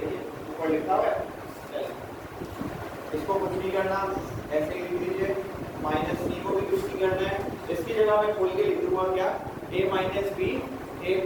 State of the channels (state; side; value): identical; both; correlation 1.00